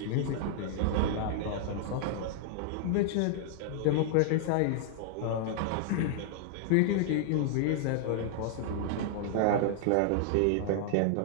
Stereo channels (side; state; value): both; different; correlation -0.01